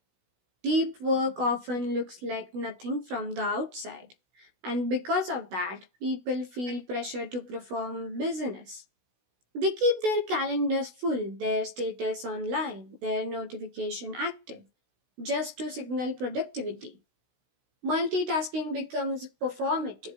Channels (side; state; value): left; late; 16 ms